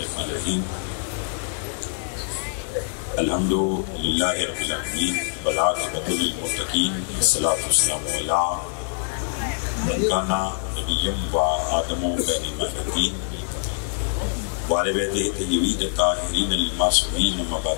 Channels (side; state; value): right; silent; digital silence